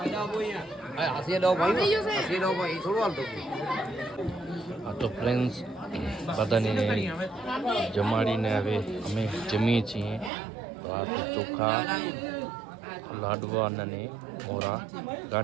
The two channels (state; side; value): drops out; left; at 10.3 s